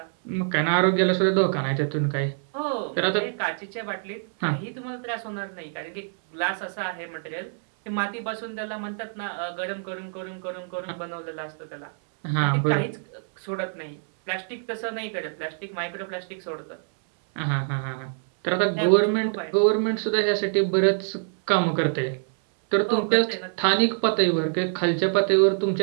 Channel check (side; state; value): left; silent; 61 dB below the other